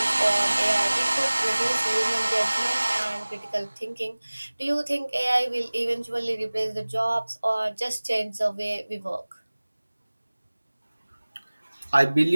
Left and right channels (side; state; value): both; inverted; correlation -1.00